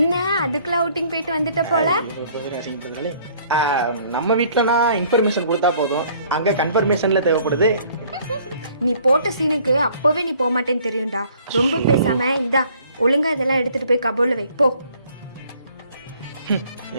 அதுக்குள்ள அவுட்டிங் போயிட்டு வந்துட்ட போல? நம்ம வீட்டுலனா இன்ஃபர்மேஷன் கொடுத்தா போதும், அங்க கன்ஃபர்மேஷன்ல தேவைப்படுது. நீ போட்ட சீனுக்கு அப்பவே நீ போக மாட்டேன்னு தெரியும்டா. ரொம்ப பேசாம இந்தா ஒழுங்கா இதெல்லாம் எடுத்துட்டு போய் கபோர்ட்ல வை போ.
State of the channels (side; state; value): both; inverted; correlation -0.58